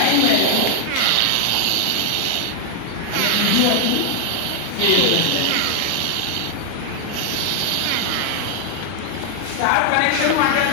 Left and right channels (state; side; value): different; both; correlation 0.00